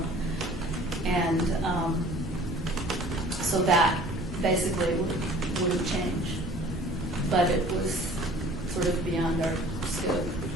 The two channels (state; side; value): normal; both; correlation 0.49